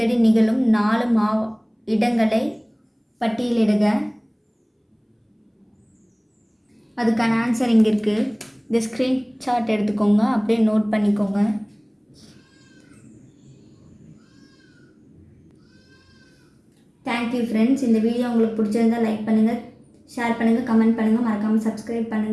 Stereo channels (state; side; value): identical; both; correlation 1.00